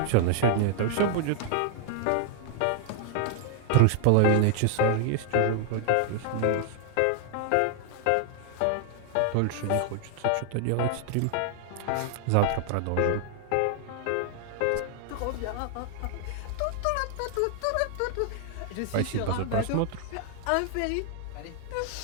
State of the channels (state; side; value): different; both; correlation 0.00